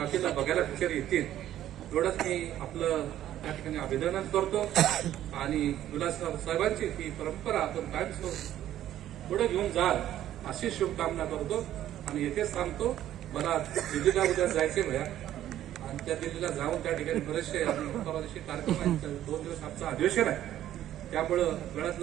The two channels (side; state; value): left; quieter; 12.3 dB